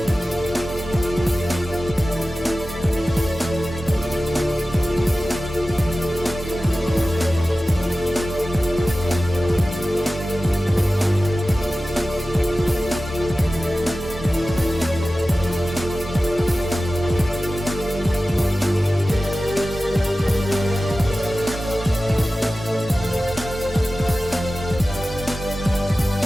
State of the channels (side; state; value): both; normal; correlation 0.95